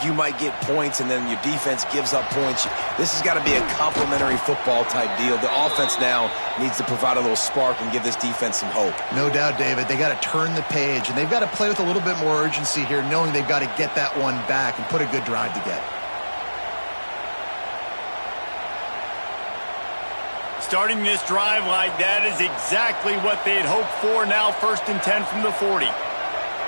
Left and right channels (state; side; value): inverted; both; correlation -1.00